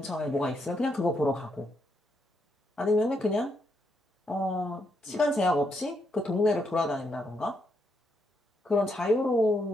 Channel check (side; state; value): both; normal; correlation 0.78